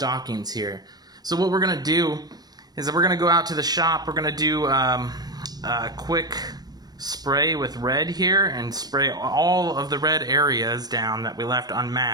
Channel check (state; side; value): late; left; 0.19 ms